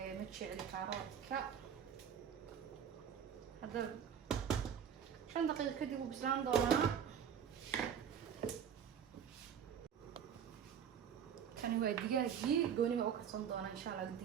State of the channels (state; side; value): quieter; left; 8.2 dB